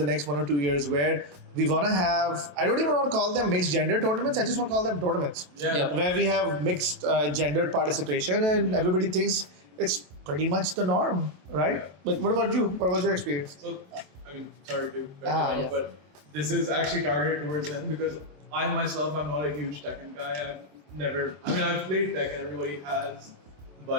next 1 or 2 years, where we want to have, I don't even want to call them mixed gender tournaments, I just want to call them tournaments. Yeah. Where we have mixed gendered participation and everybody thinks it's pretty much the norm, right? But what about you? What was your experience? So, I mean, sorry to cut you Ah, off, yeah. but this is actually targeted towards him because I myself, I'm not a huge Tekken guy. I've played Tekken, everybody has,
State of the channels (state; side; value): late; left; 27 ms